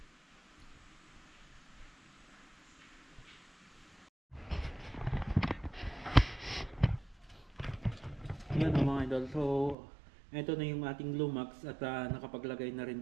Yan o mga idol, so ito na yung ating Glumax at nakapaglagay na rin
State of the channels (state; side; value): drops out; left; at 9.8 s